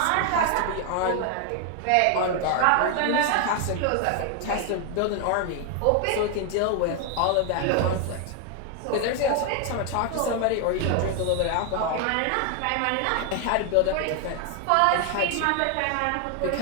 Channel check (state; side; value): different; both; correlation 0.01